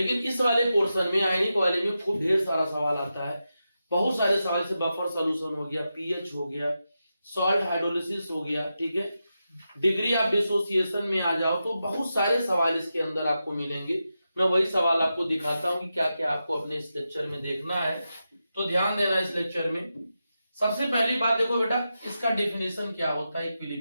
इस वाले पोर्शन में, आयनिक वाले में खूब ढेर सारा सवाल आता है। बहुत सारे सवाल से बफर सॉल्यूशन हो गया, पीएच हो गया, सॉल्ट हाइड्रोलिसिस हो गया, ठीक है, डिग्री ऑफ डिसोसिएशन में आ जाओ तो बहुत सारे सवाल इसके अंदर आपको मिलेंगे। मैं वही सवाल आपको दिखाता हूं कि क्या क्या आपको अपने इस लेक्चर में देखना है, तो ध्यान देना इस लेक्चर में। सबसे पहली बात देखो बेटा, इसका डेफिनेशन क्या होता है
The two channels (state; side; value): inverted; both; correlation -0.89